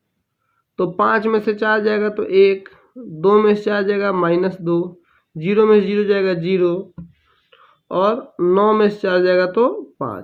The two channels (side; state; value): both; identical; correlation 1.00